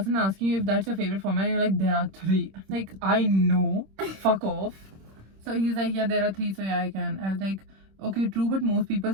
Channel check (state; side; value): late; left; 26 ms